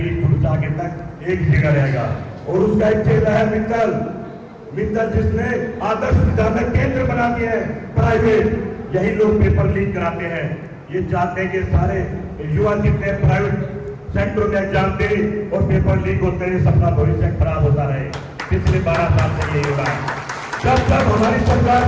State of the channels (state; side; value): identical; both; correlation 1.00